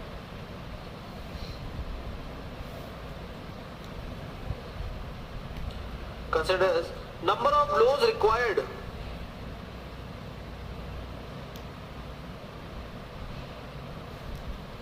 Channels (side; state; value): both; identical; correlation 1.00